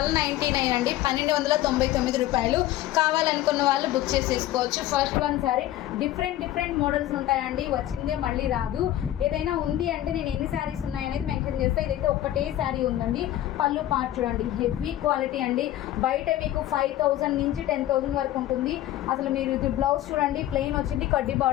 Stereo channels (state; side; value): quieter; right; 13.8 dB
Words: అండి, 1299 రూపాయలు. కావాలనుకున్న వాళ్ళు బుక్ చేసేసుకోవచ్చు. First one sorry different models ఉంటాయండి, వచ్చిందే మళ్ళీ రాదు. ఏదైనా ఉంది అంటే నేను ఎన్ని శారీస్ ఉన్నాయనేది మెన్షన్ చేస్తే, ఇదైతే ఒక్కటే శారీ ఉందండి. పళ్ళు పార్ట్ చూడండి, హెవీ క్వాలిటీ అండి. బయట మీకు 5000 నుంచి 10,000 వరకు ఉంటుంది. అసలు మీరు ఇది బ్లౌజ్ చూడండి, ప్లెయిన్ వచ్చింది, కడ్డీ